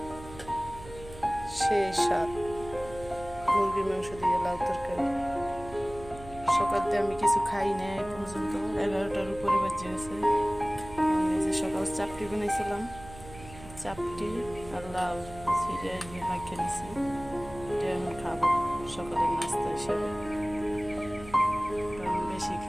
সেই স্বাদ মুরগির মাংস দিয়ে লাউ তরকারি। সকালতে আমি কিছু খাই না এই পর্যন্ত, 11টার উপরে বাজে গেছে। এই যে সকাল চাপটি বানাইছিলাম, চাপটি আর লাউ ছিঁড়ে মাখিয়ে নিছি, এটা আমি খাবো সকালের নাস্তা হিসেবে। কারণ বেশি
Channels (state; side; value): noise; right; hum, 16 dB below the sound